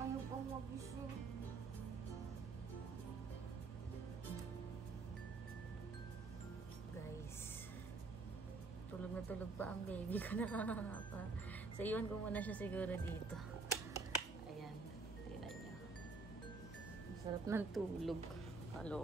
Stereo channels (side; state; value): left; quieter; 4.0 dB